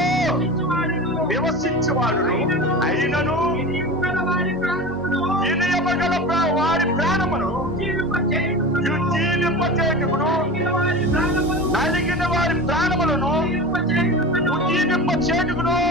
నివసించేవాడును అయినను వినయమగల వారి ప్రాణమును జీవింపచేయుటకును నలిగిన వారి ప్రాణములను జీవింపచేయుటకును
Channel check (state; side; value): normal; both; correlation 0.30